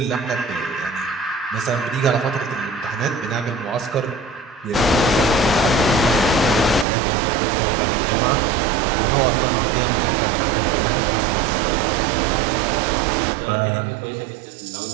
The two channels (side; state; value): left; drops out; at 6.9 s